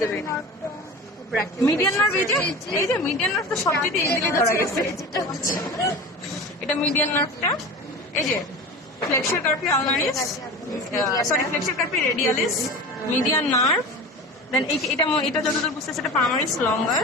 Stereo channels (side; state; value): both; normal; correlation 0.32